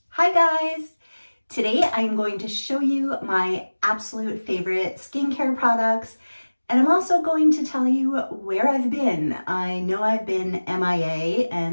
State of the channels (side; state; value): both; inverted; correlation -1.00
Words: Hi guys! Today I'm going to show you my absolute favorite skincare products, and I'm also going to tell you where I've been. I know I've been MIA,